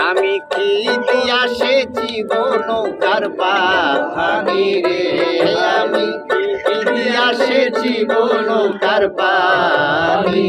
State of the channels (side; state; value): both; identical; correlation 1.00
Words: আমি কি দিয়া সেছি গো নৌকার পানি রে আমি কি দিয়া সেছি গো নৌকার পানি